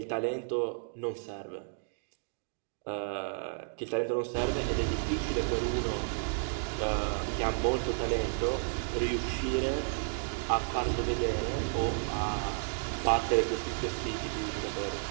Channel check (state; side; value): silent; left; digital silence